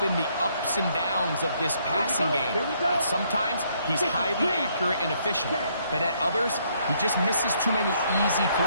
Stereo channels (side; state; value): both; inverted; correlation -0.70